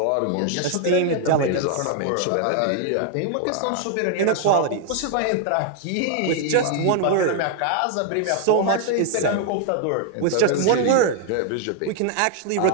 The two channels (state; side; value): different; both; correlation 0.00